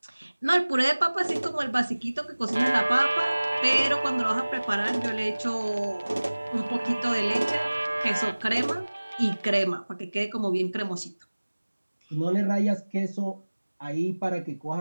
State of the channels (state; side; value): inverted; both; correlation -1.00